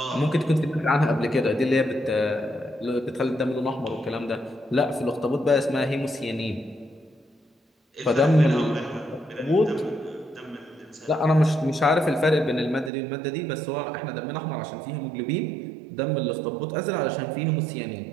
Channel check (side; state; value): left; drops out; at 12.9 s